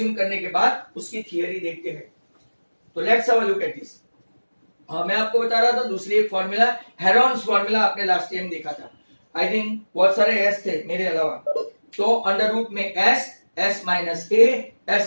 करने के बाद उसकी थियरी देखते हैं। तो let's have a look at this. मैं आपको बता रहा था दूसरी एक फॉर्मूला, हेरोन्स फॉर्मूला, आपने लास्ट टाइम देखा था। आई थिंक बहुत सारे एस थे मेरे अलावा। तो अंडर रूट में S, S minus A,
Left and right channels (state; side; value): inverted; both; correlation -1.00